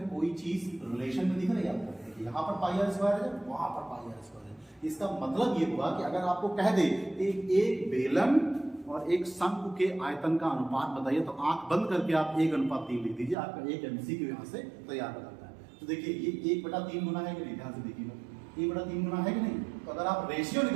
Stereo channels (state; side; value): drops out; left; at 13.4 s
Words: कोई चीज रिलेशन में दिख रही है आपको? यहाँ पर पाई आर स्क्वायर है, वहां पर पाई आर स्क्वायर है। इसका मतलब ये हुआ कि अगर आपको कह दे एक बेलन और एक शंख के आयतन का अनुपात बताइए, तो आंख बंद करके आप 1:3 लिख दीजिए, आपका एक MCQ यहाँ से तैयार हो जाता है। तो देखिए ये 1/3 गुना है कि नहीं, ध्यान से देखिएगा, 1/3 गुना है कि नहीं। तो अगर आप रेशियो